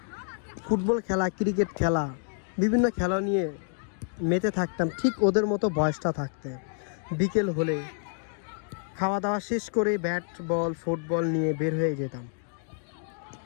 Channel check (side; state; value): right; silent; 59 dB below the other